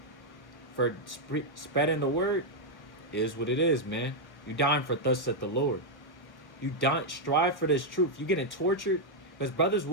for spreading the word, it is what it is, man. You dying for thus saith the Lord. You don't strive for this truth. You getting tortured, because brothers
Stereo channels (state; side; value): late; right; 1.2 ms